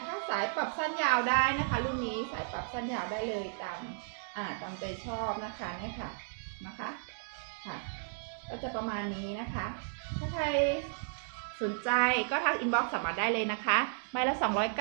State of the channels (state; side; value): silent; left; digital silence